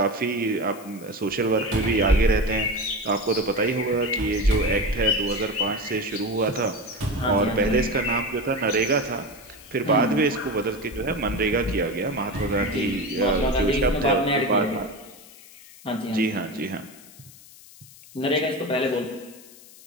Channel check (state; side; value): noise; left; hiss, 21 dB below the sound